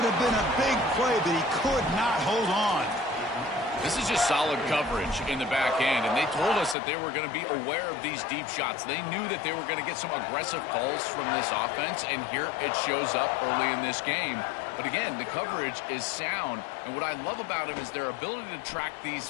have been a big play, but he could not hold on. This is just solid coverage in the back end, and they told us that they were going to be aware of these deep shots. They knew that they were going to get some aggressive calls from this offense, and here it shows up early in this game. But again, the coverage is sound, and what I love about him is their ability to track these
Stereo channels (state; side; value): drops out; right; at 6.8 s